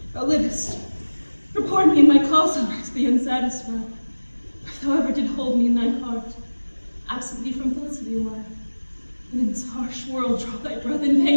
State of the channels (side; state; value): both; inverted; correlation -1.00